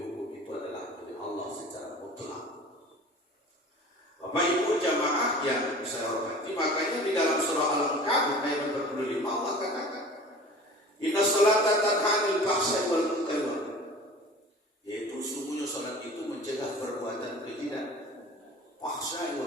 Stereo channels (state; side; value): normal; both; correlation 0.41